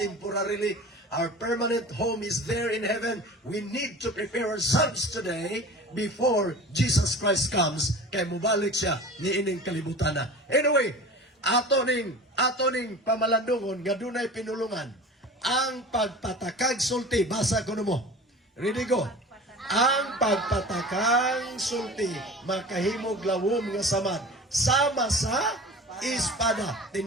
Our permanent home is there in heaven. We need to prepare ourselves today before Jesus Christ comes. Kay mubalik siya ni ining kalibutan na. Anyway, ato ning pamalandungon nga dunay pinulungan. ang pagpatakag sulti, basa ko mo. Ready go. Ang pagpatakang sulti makahimog lawom nga samad sama sa espada.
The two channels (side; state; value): both; normal; correlation 0.38